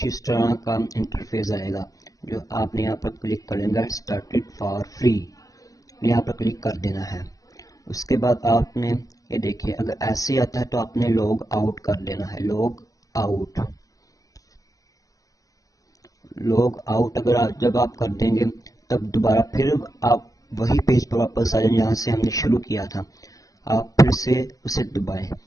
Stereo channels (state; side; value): late; right; 0.17 ms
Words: इस तरह का इंटरफेस आएगा, जो आपने यहाँ पर क्लिक कर लेंगे स्टार्टेड फॉर फ्री, यहाँ पर क्लिक कर देना है। उसके बाद आपने ये देखिए, अगर ऐसे आता है तो आपने लॉग आउट कर लेना है। लॉग आउट अगर जब आप कर देंगे तब दोबारा फिर आप वही पेज पर वापस आ जाएंगे जहाँ से हमने शुरू किया था। आप फिर से उसे दबाएं,